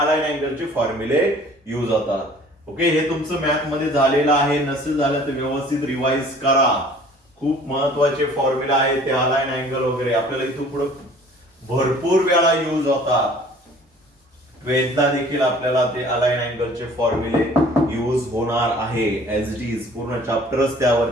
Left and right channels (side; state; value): both; normal; correlation 0.51